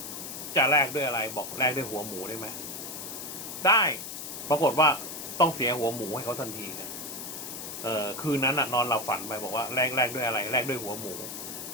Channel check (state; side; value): noise; left; hiss, 8 dB below the sound